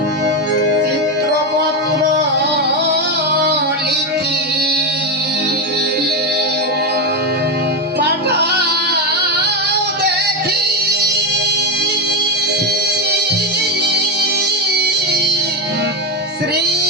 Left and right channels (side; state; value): both; normal; correlation 0.10